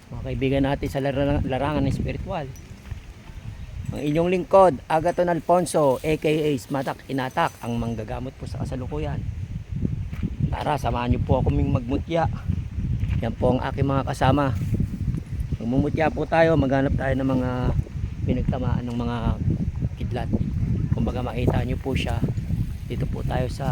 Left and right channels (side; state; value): both; identical; correlation 1.00